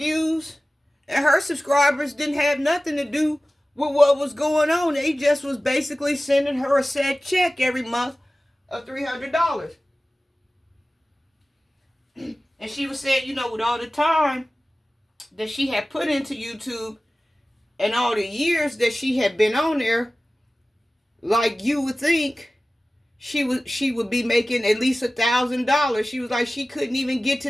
and her subscribers didn't have nothing to do with what was going on. They just was basically sending her a set check every month of $300. And she was saying, you know, with all the time that she had put into YouTube and all the years that she had been on there, like, you would think she would be making at least $1,000. She was like, she couldn't even get to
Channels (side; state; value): both; normal; correlation 0.96